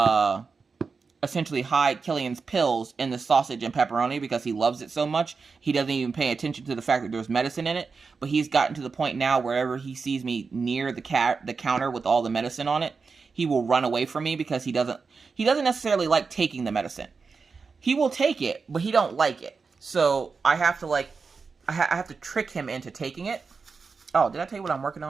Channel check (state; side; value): quieter; left; 4.9 dB